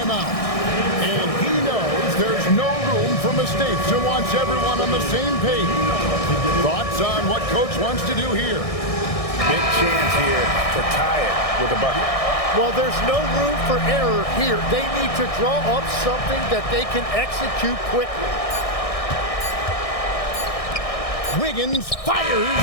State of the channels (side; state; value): right; late; 1.6 ms